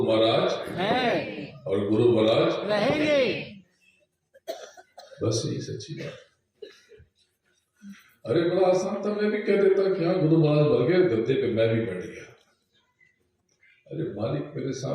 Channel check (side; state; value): both; identical; correlation 1.00